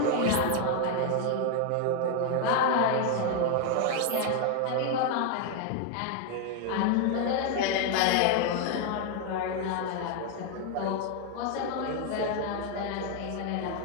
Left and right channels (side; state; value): both; different; correlation 0.01